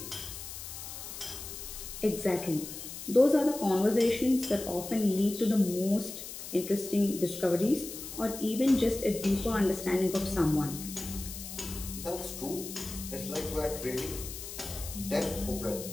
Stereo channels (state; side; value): noise; left; hiss, 10 dB below the sound